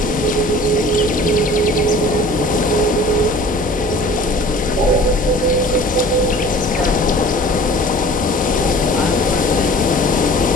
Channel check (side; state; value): both; normal; correlation 0.45